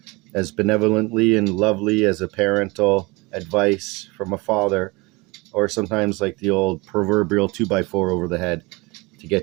as benevolently and lovely as a parental advice from a father, or sometimes like the old proverbial 2x4 over the head to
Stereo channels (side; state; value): left; quieter; 24.9 dB